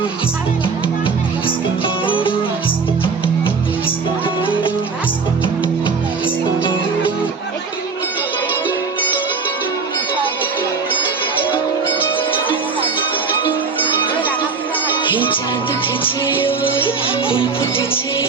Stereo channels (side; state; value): left; quieter; 4.9 dB